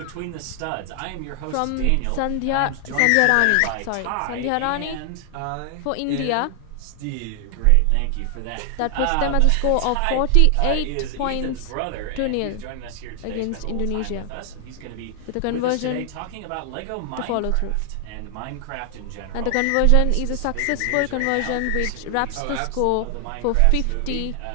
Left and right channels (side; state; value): both; different; correlation 0.00